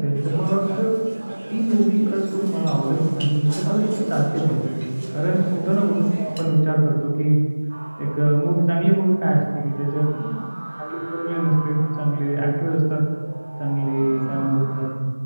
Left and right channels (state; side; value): inverted; both; correlation -1.00